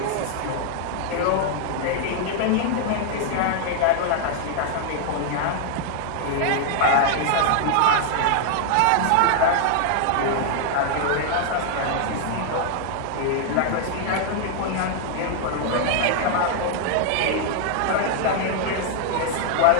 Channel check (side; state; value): both; different; correlation 0.00